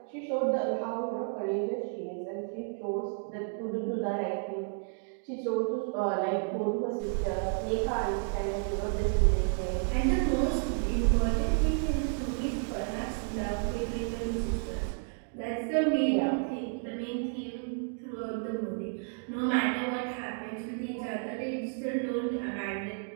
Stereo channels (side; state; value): left; silent; 56 dB below the other